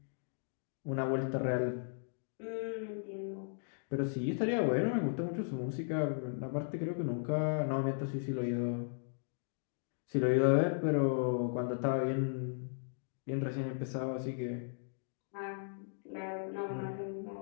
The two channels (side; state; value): right; silent; digital silence